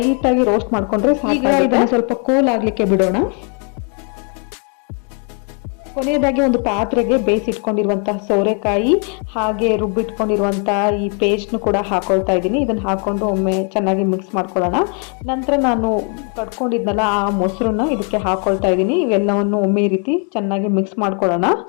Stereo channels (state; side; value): quieter; right; 39.0 dB